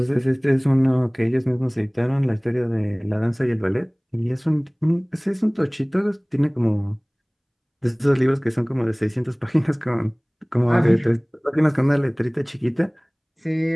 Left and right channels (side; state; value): both; identical; correlation 1.00